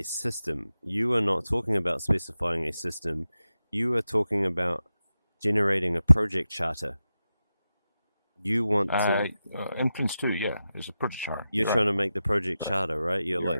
system. You are not talking about specifying a system. You are talking about generating a project charter. You want Uh, to, in Prince 2, yeah, it's a project chart. you're You're right. trying to make the project Right. charter, right? You're Yeah,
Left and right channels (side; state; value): both; inverted; correlation -0.92